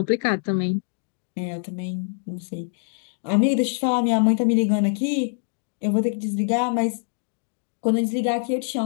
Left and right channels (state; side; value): silent; right; digital silence